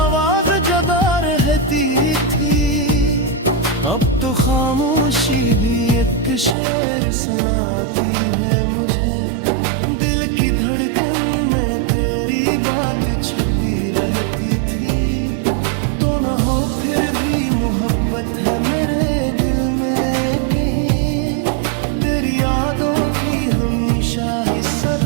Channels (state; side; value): drops out; left; at 6.6 s